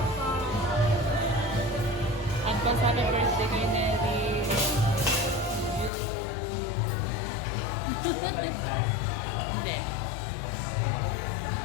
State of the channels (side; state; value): right; drops out; at 5.9 s